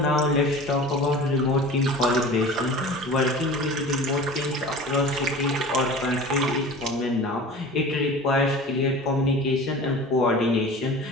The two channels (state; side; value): normal; both; correlation 0.38